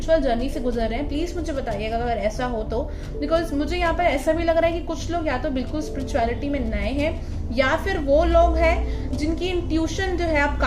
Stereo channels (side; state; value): both; identical; correlation 1.00